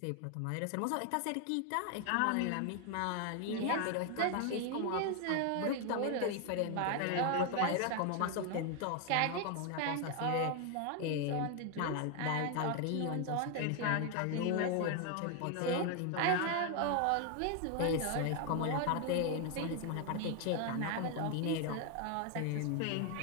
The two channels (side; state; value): both; different; correlation 0.01